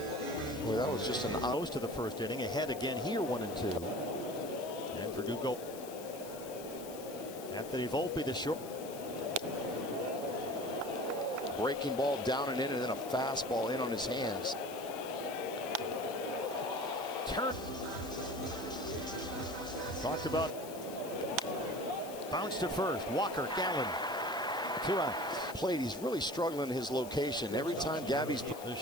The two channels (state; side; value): noise; left; hiss, 15 dB below the sound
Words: Boy, that was just an most to the first inning. Ahead again here, 1-2. And Verdugo. Anthony Volpe, the short. Breaking ball down and in, and then a fastball in on his hands. Turn. Talked about. Bounce to first. Walker, Gallen. 2 outs. Plate. He's really struggling in his location. Every time Gabby's. The